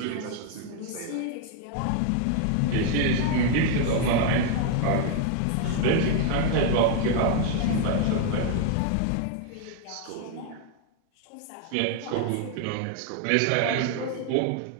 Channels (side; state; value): both; different; correlation 0.00